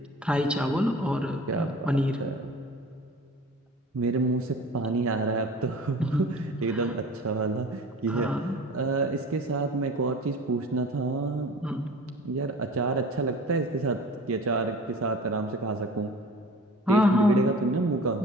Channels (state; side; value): normal; both; correlation 0.41